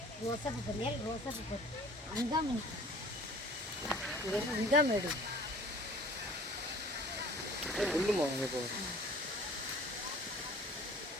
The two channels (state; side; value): normal; both; correlation 0.49